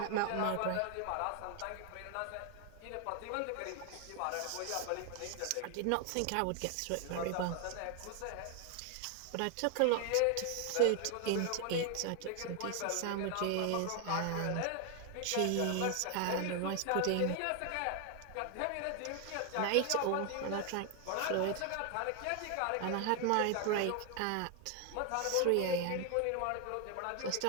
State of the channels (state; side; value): different; both; correlation 0.00